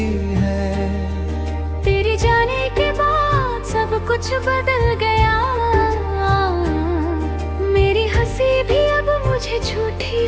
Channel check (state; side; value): identical; both; correlation 1.00